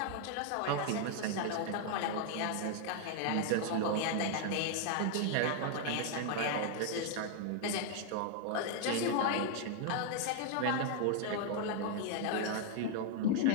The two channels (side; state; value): both; different; correlation 0.00